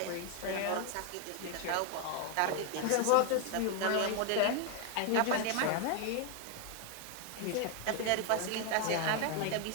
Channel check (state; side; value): different; both; correlation 0.01